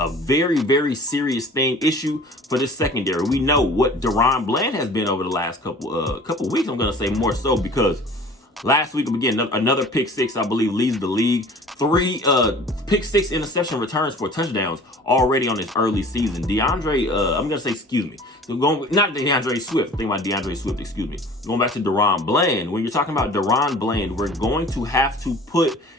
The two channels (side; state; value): both; normal; correlation 0.45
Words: very, very serious issue for this secondary. We know what Deron Bland has been over the last couple weeks. I'm going to say more so, because last week, again, another pick six, I believe, leads the league. 3 pick 6 interception returns for touchdowns already on this early season. Not DeAndre Swift. Think about DeAndre Swift, excuse me. Going back to Deron Bland. When you're talking about Deron Bland, we're going to have to put